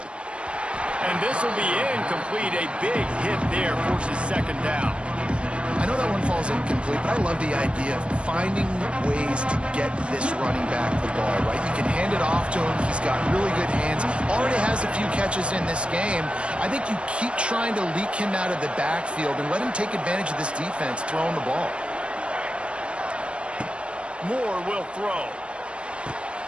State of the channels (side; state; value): left; late; 0.058 ms